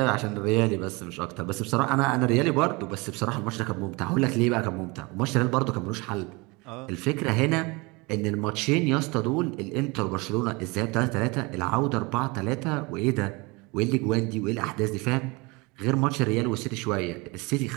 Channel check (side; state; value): left; quieter; 26.3 dB